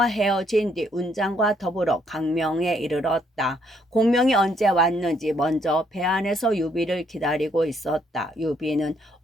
헤어진 뒤 운장과 더불어 강명에 이르렀다. 공명이 언제 왔는지 먼저 배 안에서 유비를 기다리고 있었다. 유비는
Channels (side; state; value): both; normal; correlation 0.70